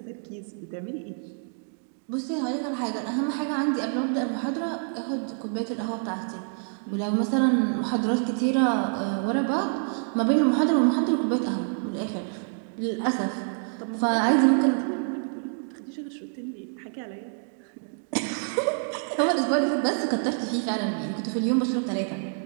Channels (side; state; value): left; silent; 60 dB below the other